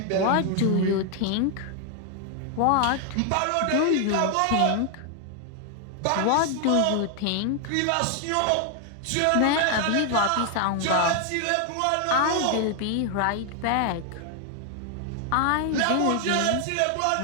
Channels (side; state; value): both; different; correlation 0.00